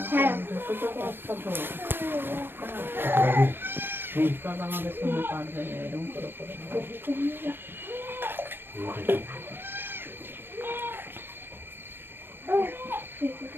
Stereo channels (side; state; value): left; late; 0.10 ms